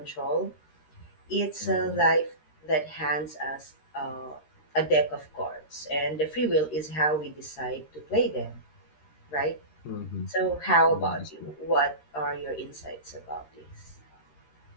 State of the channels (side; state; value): right; late; 13 ms